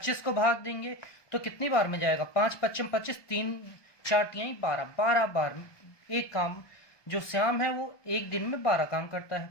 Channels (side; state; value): right; late; 1.2 ms